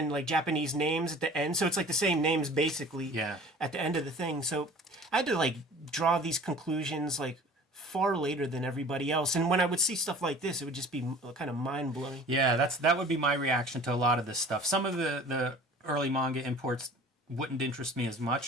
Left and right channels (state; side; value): normal; both; correlation 0.45